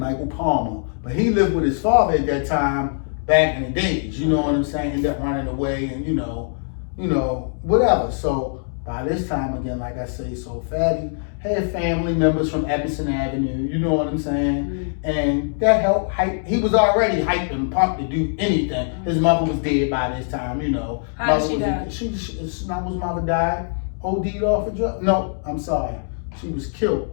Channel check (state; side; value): silent; right; digital silence